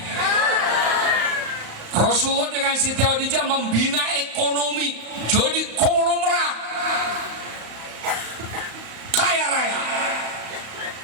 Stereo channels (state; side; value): late; left; 35 ms